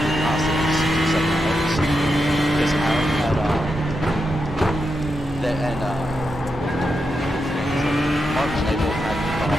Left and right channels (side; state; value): both; normal; correlation 0.86